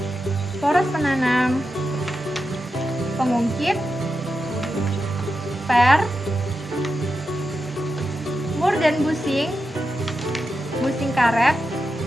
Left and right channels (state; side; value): normal; both; correlation 0.89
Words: poros penanam, pengungkit, per, mur dan busing karet,